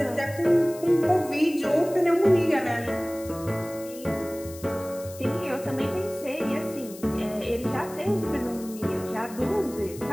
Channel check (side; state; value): left; noise; hiss, 17 dB below the sound